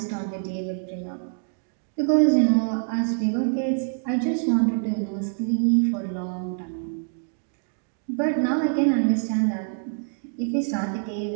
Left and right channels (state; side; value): silent; left; digital silence